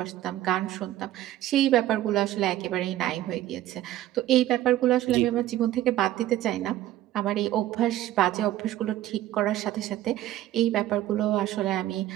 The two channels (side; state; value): left; quieter; 13.9 dB